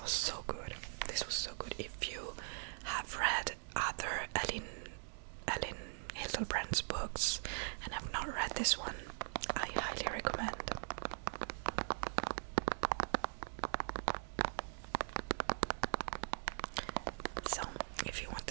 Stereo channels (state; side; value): silent; left; digital silence